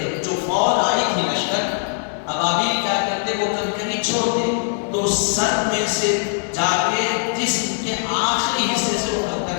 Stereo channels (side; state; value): right; silent; 63 dB below the other